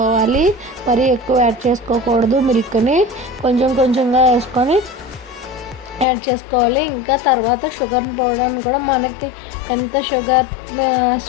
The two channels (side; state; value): right; drops out; at 6.1 s